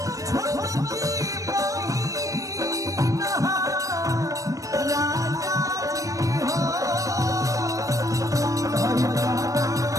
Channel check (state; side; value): late; left; 0.16 ms